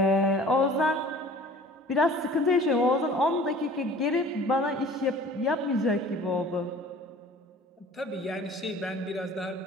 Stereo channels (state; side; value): normal; both; correlation 0.47